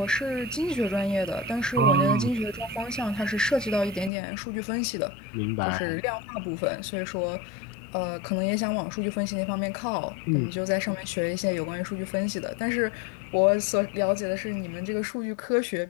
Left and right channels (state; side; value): drops out; right; at 4.1 s